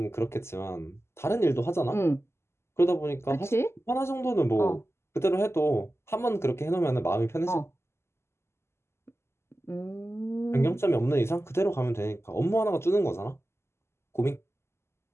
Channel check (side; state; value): right; late; 0.12 ms